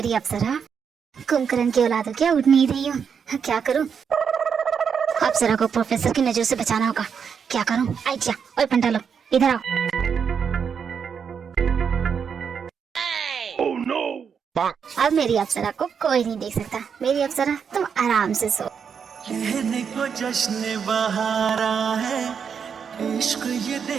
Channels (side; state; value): left; quieter; 6.8 dB